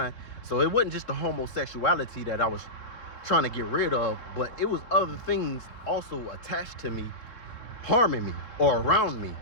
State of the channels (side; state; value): right; late; 3.9 ms